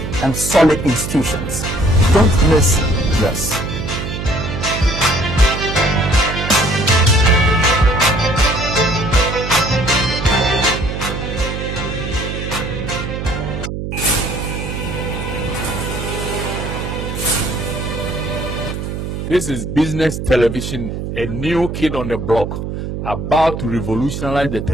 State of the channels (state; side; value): noise; right; hum, 5 dB below the sound